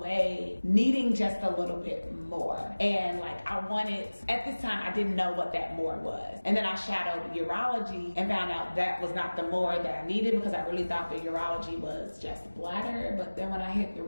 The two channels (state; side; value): inverted; both; correlation -1.00